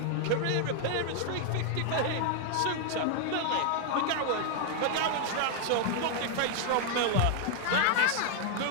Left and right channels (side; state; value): both; different; correlation 0.00